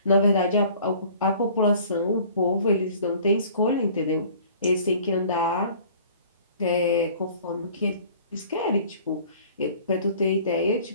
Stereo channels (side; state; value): both; inverted; correlation -0.50